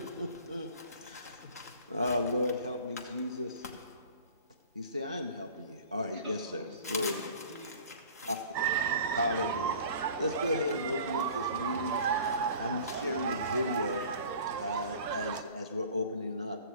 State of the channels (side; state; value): both; inverted; correlation -0.45